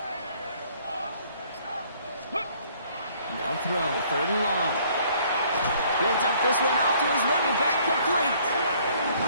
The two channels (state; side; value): inverted; both; correlation -0.60